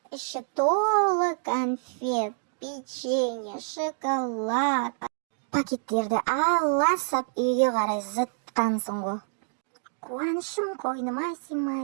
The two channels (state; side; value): silent; left; digital silence